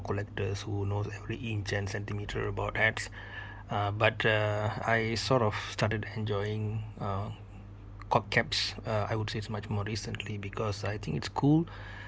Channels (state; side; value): identical; both; correlation 1.00